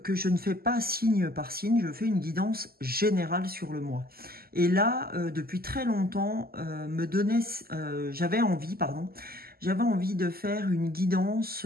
que je ne fais pas signe par signe, je fais une guidance générale sur le mois. Et là, depuis très longtemps, j'avais envie de faire une guidance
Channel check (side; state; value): left; late; 0.44 ms